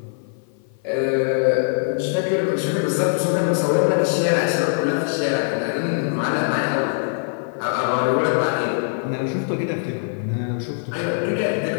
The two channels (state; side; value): silent; right; 55 dB below the other